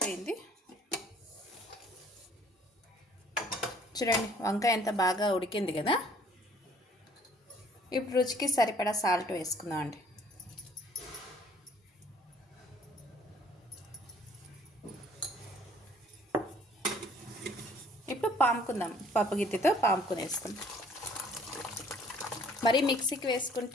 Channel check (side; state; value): both; normal; correlation 0.58